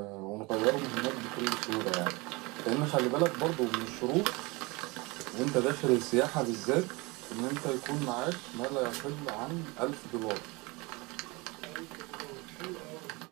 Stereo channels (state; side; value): quieter; left; 25.4 dB